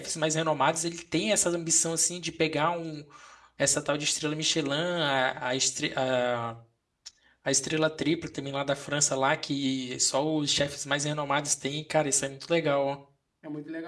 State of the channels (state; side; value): identical; both; correlation 1.00